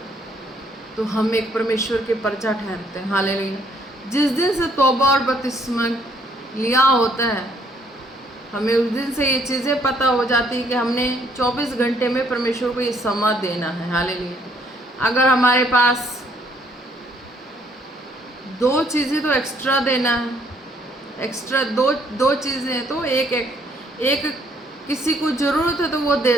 तो हम एक परमेश्वर के प्रजा ठहरते हैं। हालेलुया। जिस दिन से तौबा और बपतिस्मा लिया होता है हमें उस दिन से ये चीज़ें पता हो जाती है कि हमने 24 घंटे में परमेश्वर को ये समय देना है। हालेलुया। अगर हमारे पास 2 चीज़ें तो एक्स्ट्रा देना है, एक्स्ट्रा दो चीज़ें हैं तो एक किसी को ज़रूरत है तो वो दे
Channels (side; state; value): both; normal; correlation 0.66